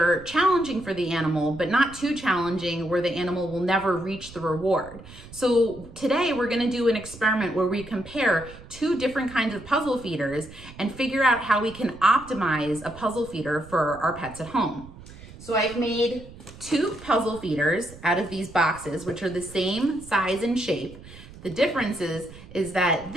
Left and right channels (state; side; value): noise; right; rumble, 18 dB below the sound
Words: challenging for the animal, but not too challenging where the animal will never reach the reward. So today we're going to do an experiment where we compare two different kinds of puzzle feeders and figure out how we can optimize a puzzle feeder for our pets at home. So I've made two puzzle feeders out of these boxes, which are the same size and shape. The difference is that